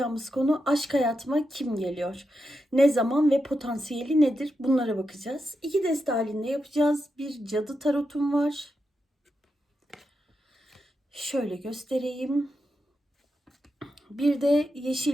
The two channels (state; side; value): normal; both; correlation 0.86